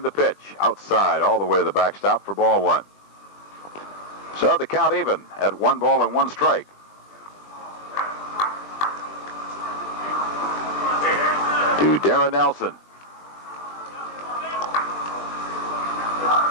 the pitch outside all the way to the backstop for ball 1. So the count even at 1 ball and 1 strike. To Darren Nelson.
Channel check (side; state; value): right; late; 20 ms